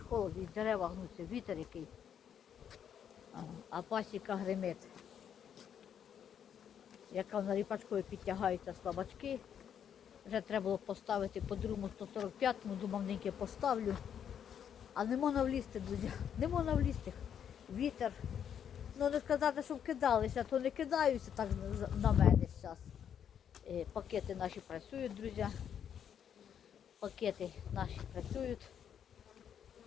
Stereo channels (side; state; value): right; quieter; 8.6 dB